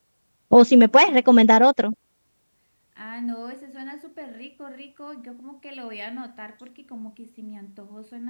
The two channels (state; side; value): inverted; both; correlation -1.00